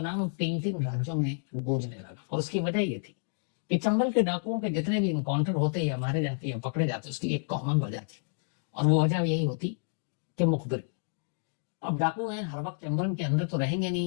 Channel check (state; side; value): silent; right; digital silence